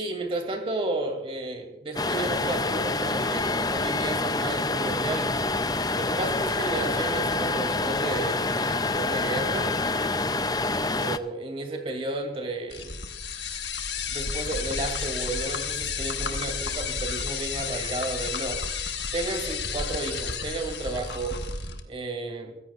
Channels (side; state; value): both; normal; correlation 0.26